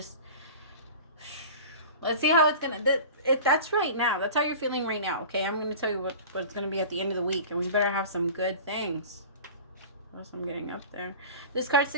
let's see how it's going to, that's right now. That's how you're feeling right now, okay? I'm going to tell you what it's going to be at the end of the week, and we better have some good things. What else I'm getting up there? This card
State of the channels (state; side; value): inverted; both; correlation -0.37